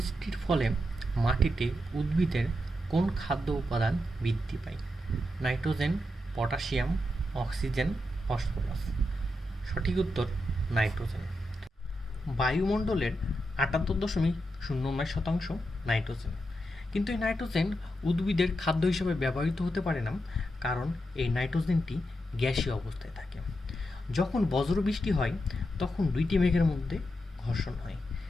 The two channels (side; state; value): both; normal; correlation 0.86